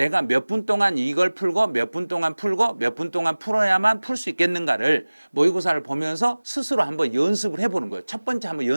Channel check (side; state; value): both; inverted; correlation -1.00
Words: 몇 분 동안 이걸 풀고 몇 분 동안 풀고 몇 분 동안 풀어야만 풀 수 있겠는가를 모의고사를 보면서 스스로 한번 연습을 해보는 거예요. 첫 번째 한번